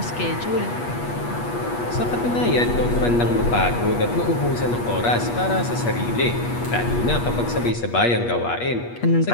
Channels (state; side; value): late; right; 8.4 ms